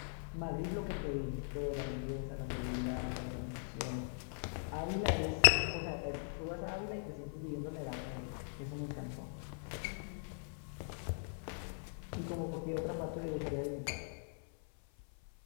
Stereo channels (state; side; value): silent; right; 51 dB below the other